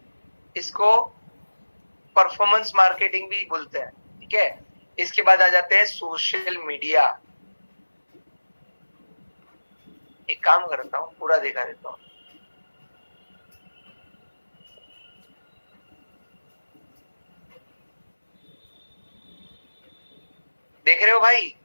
इसको परफॉर्मेंस मार्केटिंग भी बोलते हैं। ठीक है, इसके बाद आ जाते हैं सोशल मीडिया। एक काम करता हूं, पूरा दिखा देता हूं। देख रहे हो भाई?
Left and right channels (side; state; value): both; inverted; correlation -1.00